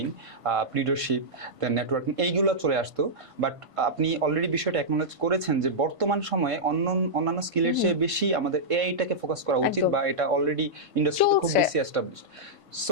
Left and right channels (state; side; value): late; left; 1.5 ms